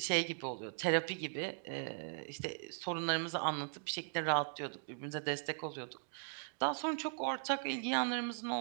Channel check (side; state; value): left; silent; digital silence